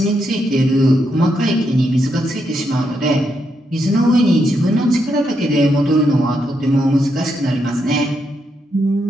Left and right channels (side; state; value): both; normal; correlation 0.80